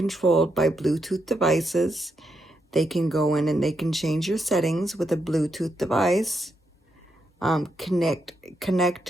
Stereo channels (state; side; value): normal; both; correlation 0.81